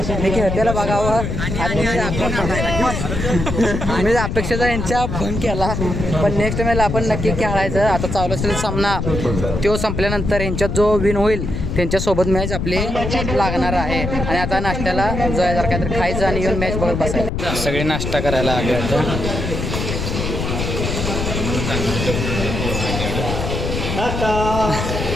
मी खेळतेला बघावं आणि मी अपेक्षेचा यांच्या फोन केला. पण नेक्स्ट मॅच आपण नक्की खेळायचं. आता चालू असेल सामना, तो संपल्यानंतर यांच्यात जो विन होईल त्यांच्यासोबत मॅच आपली लागणार आहे. आणि आता नाश्त्याला जर काहीतरी खायचं आणि येऊन मॅच बघत बसायचं. सगळे नाश्ता करायला आले आता.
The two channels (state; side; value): noise; left; rumble, 3 dB below the sound